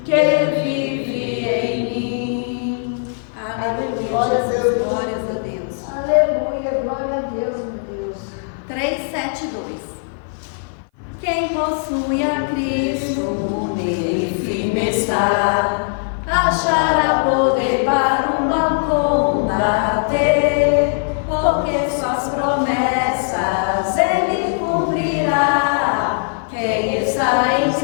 que vive em mim. Aleluia, Jesus, glórias a Deus. Aleluia, glória a Deus, meu Deus. 372. Quem possui a Cristo, nele firme está, achará poder para o mal combater, porque suas promessas ele cumprirá. Quem está em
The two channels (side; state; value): right; silent; 57 dB below the other